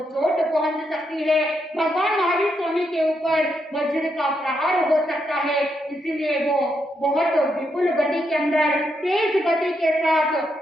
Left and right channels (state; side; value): normal; both; correlation 0.80